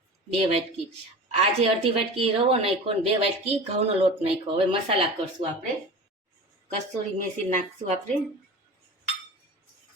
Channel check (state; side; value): normal; both; correlation 0.34